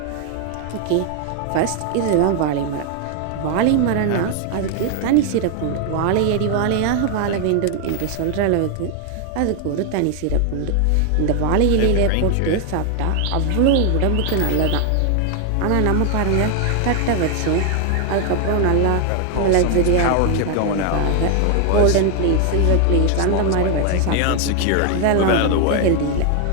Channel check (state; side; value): different; both; correlation 0.00